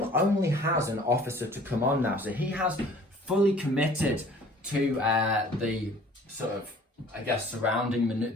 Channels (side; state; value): both; normal; correlation 0.51